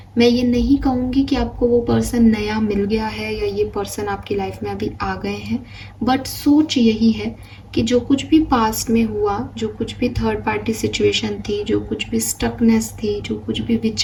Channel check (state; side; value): identical; both; correlation 1.00